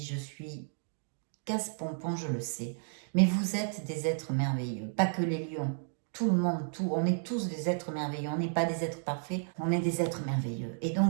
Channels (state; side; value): silent; left; digital silence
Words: je suis casse-pompon, je le sais. Mais vous êtes des êtres merveilleux, pas que les lions. Tout le monde, on est tous des êtres merveilleux. On n'est pas des êtres parfaits, on est des êtres merveilleux. Et